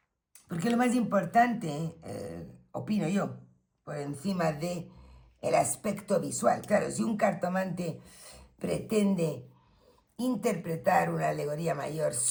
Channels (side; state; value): both; identical; correlation 1.00